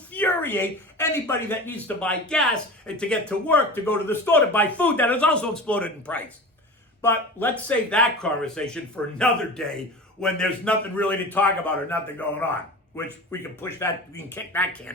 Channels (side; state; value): both; normal; correlation 0.33